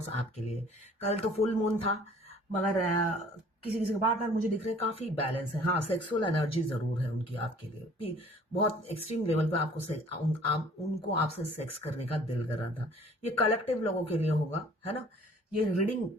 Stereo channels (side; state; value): both; normal; correlation 0.53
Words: आपके लिए। कल तो फुल मून था, मगर किसी किसी के पार्टनर मुझे दिख रहे हैं काफी बैलेंस है। हाँ, सेक्सुअल एनर्जी जरूर है उनकी आपके लिए, बहुत एक्सट्रीम लेवल पे उनको आपसे सेक्स करने का दिल कर रहा था। ये कलेक्टिव लोगों के लिए होगा, है ना। ये रीडिंग